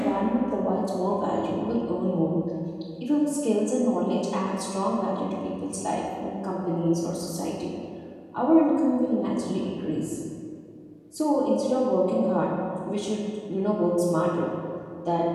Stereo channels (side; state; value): both; identical; correlation 1.00